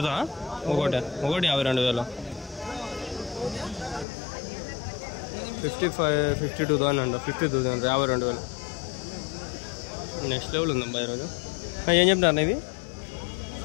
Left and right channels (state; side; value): drops out; right; at 4.0 s